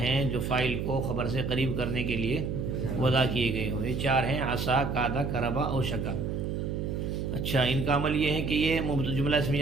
جو فاعل کو خبر سے قریب کرنے کے لیے وضع کیے گئے ہوں۔ یہ چار ہیں: عصا، کادا، کربا اور شکا۔ اچھا، ان کا عمل یہ ہے کہ یہ جملہ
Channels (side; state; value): right; noise; hum, 2 dB below the sound